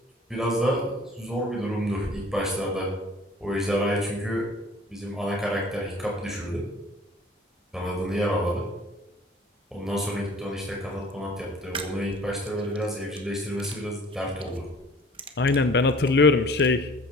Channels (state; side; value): normal; both; correlation 0.49